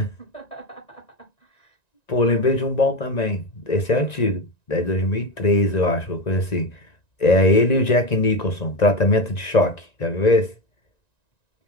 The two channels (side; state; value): right; late; 1.9 ms